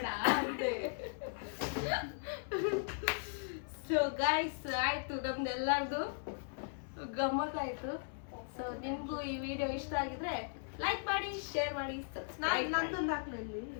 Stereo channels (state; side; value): silent; right; digital silence